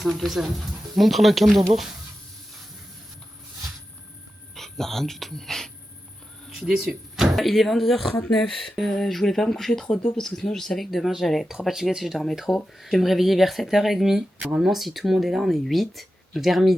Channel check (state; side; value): normal; both; correlation 0.91